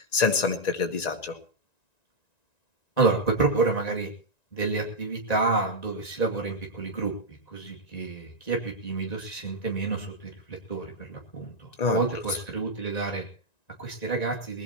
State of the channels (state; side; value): late; right; 1.9 ms